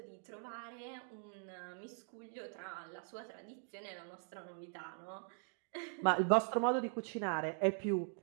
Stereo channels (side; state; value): left; silent; 50 dB below the other